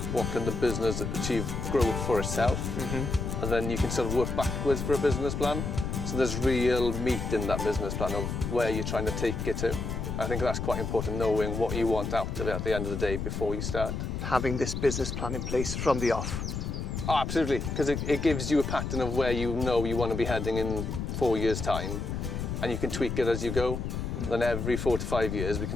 what can the business achieve growth for itself, and then you can sort of work backwards for a business plan. So there's real meat in that business plan of where you're trying to take it to. I think that's quite important, knowing what you want out of it at the end of the day before you start. Having this business plan in place from the off. Oh, absolutely, because it gives you a pattern of where you know you want to be heading in 4 years' time, and you can tweak it as you go. Then every 4 to 5 years we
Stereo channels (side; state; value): left; noise; rumble, 3 dB below the sound